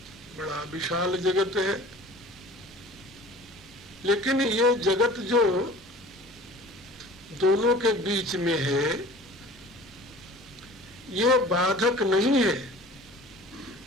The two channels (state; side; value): normal; both; correlation 0.43